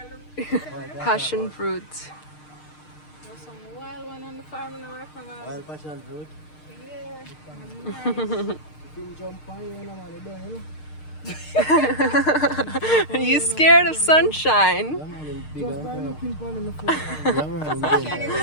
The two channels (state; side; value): late; right; 6.6 ms